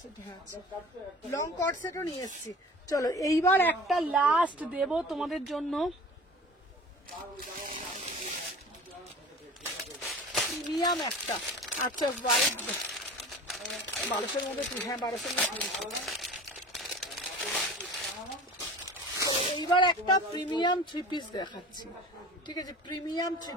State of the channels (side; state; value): both; normal; correlation 0.40